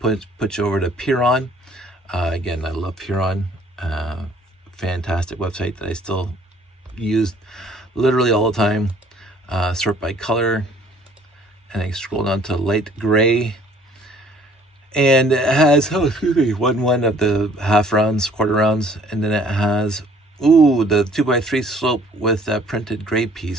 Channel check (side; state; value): both; normal; correlation 0.58